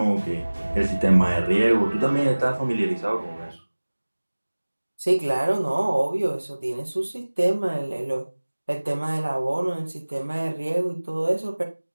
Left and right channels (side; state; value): both; inverted; correlation -1.00